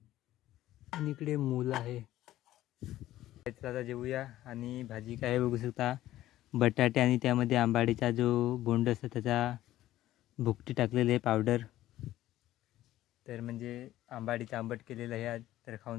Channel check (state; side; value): quieter; right; 14.5 dB